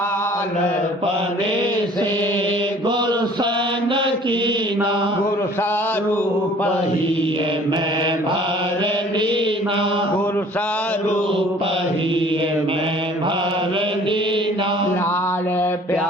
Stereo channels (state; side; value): normal; both; correlation 0.52